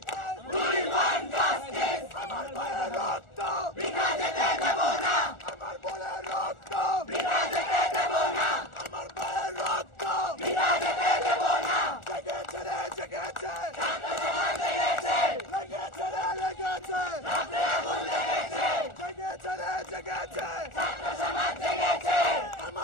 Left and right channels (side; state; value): right; late; 1.4 ms